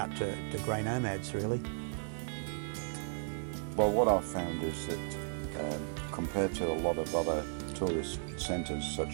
to grey nomads really. Well, what I've found is that compared to a lot of other tourist centres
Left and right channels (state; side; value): silent; left; 54 dB below the other